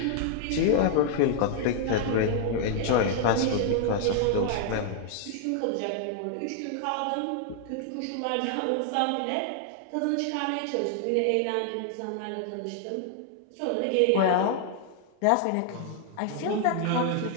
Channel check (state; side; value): different; both; correlation 0.00